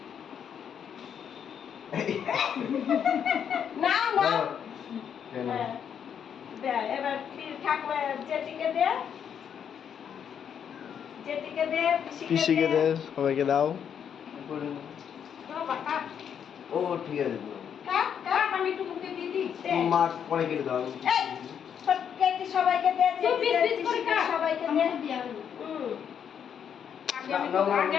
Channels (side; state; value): right; quieter; 8.2 dB